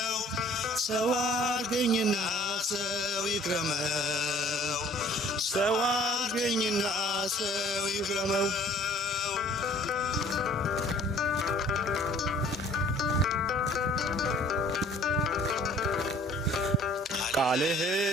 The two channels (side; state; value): both; normal; correlation 0.53